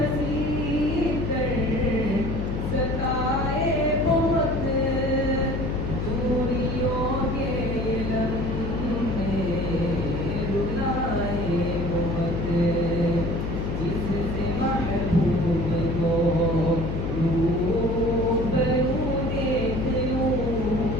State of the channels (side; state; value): left; noise; hum, 2 dB below the sound